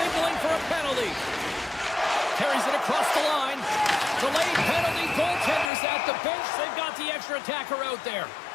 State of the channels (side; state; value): right; drops out; at 5.7 s